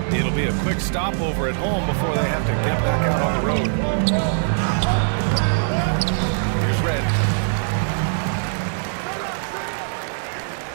It'll be a quick stopover at home before they have to get back out on the road. Here's Red.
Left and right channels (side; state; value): left; silent; 64 dB below the other